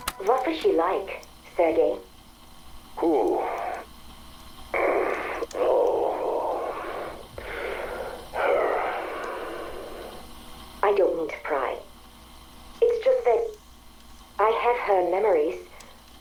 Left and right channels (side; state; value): both; identical; correlation 1.00